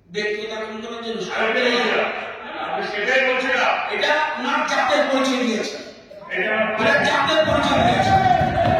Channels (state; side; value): identical; both; correlation 1.00